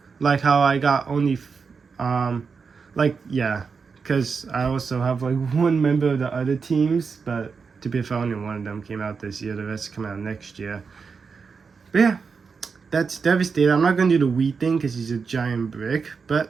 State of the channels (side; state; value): left; quieter; 5.3 dB